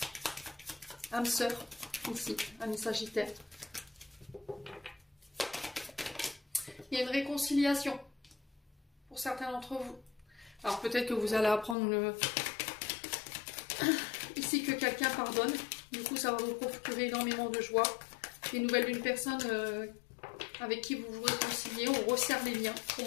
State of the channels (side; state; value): right; drops out; at 11.8 s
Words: Âme sœur, ici, ami Sagittaire. Il y a une réconciliation pour certains d'entre vous. Alors peut-être que vous allez apprendre ici que quelqu'un pardonne. Du coup, ça va vous procurer énormément de joie. Des nouvelles d'une personne avec qui vous vous réconciliez, on resserre les liens. Pour